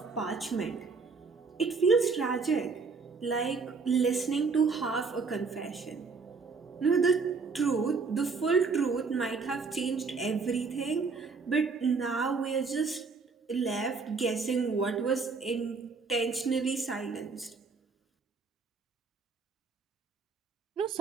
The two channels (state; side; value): quieter; left; 4.7 dB